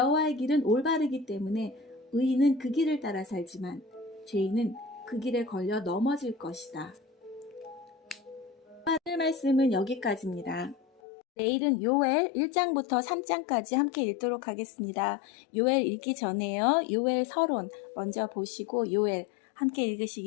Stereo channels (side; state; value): right; drops out; at 11.0 s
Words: 길은 올바르기 때문에 의인은 그 길을 따라 살지만 죄인은 그 길에 걸려 넘어질 것이다. 오늘 말씀은 여기까지입니다. 내일은 요엘 1장부터 3장까지 함께 읽도록 하겠습니다. 요엘 읽기 전에요. 요엘 서론 먼저 보시고 요엘 함께